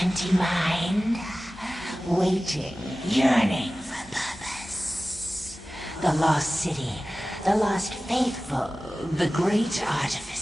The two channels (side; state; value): both; normal; correlation 0.96